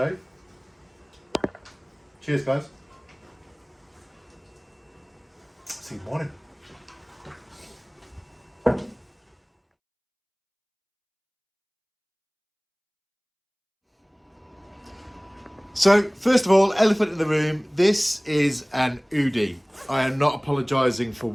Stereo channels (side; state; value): both; identical; correlation 1.00